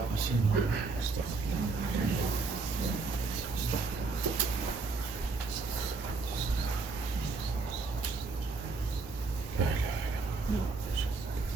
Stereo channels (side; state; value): left; quieter; 4.0 dB